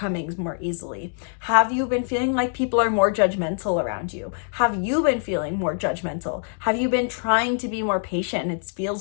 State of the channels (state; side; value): silent; right; digital silence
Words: more easily? Have you been feeling like people are more judgmental around you? Have you been feeling more judgmental? Have you been trying to be more patient and it